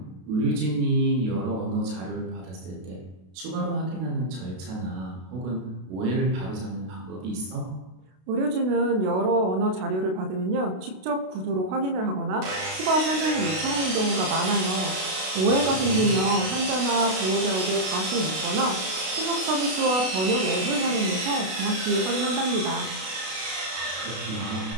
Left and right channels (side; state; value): left; late; 32 ms